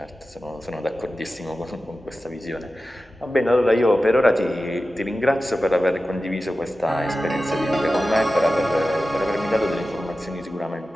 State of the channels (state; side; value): normal; both; correlation 0.94